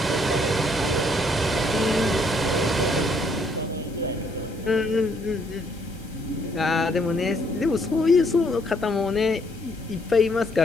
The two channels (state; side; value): normal; both; correlation 0.68